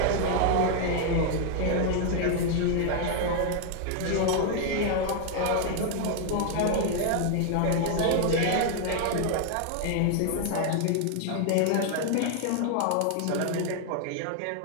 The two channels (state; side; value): different; both; correlation 0.00